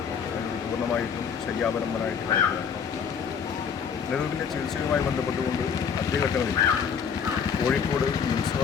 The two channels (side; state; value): right; quieter; 6.8 dB